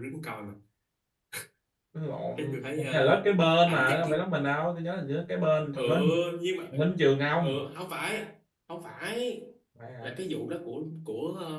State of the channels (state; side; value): identical; both; correlation 1.00